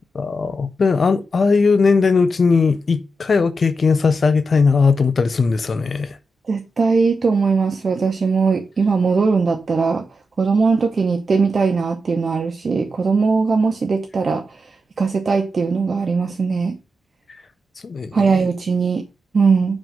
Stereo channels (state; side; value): normal; both; correlation 0.86